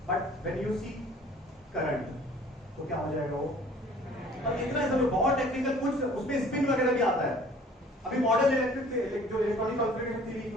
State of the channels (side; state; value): both; normal; correlation 0.52